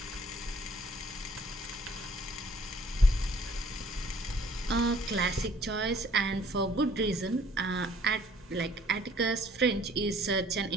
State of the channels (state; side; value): normal; both; correlation 0.57